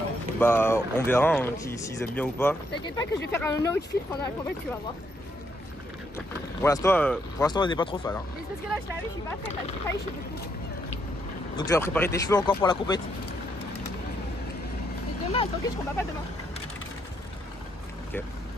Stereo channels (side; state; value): both; normal; correlation 0.75